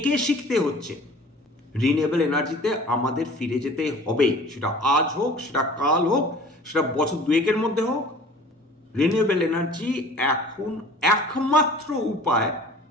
শিখতে হচ্ছে। রিনিউয়েবল এনার্জিতে আমাদের ফিরে যেতে হবে, সেটা আজ হোক, সেটা কাল হোক, সেটা বছর দুয়েকের মধ্যে হোক। রিনিউয়েবল এনার্জি এখন একমাত্র উপায়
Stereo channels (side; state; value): both; normal; correlation 0.46